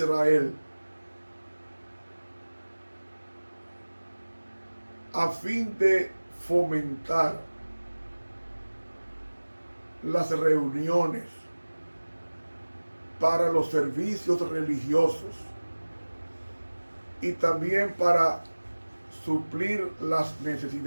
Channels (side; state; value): both; inverted; correlation -1.00